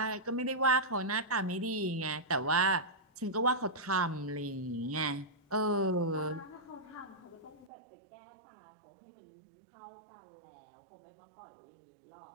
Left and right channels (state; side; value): drops out; left; at 7.7 s